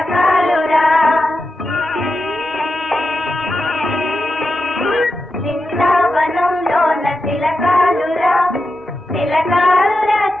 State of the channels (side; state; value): both; normal; correlation 0.89